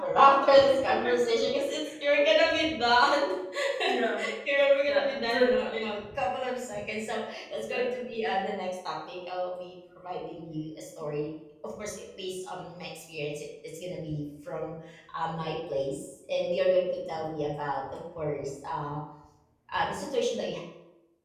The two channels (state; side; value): identical; both; correlation 1.00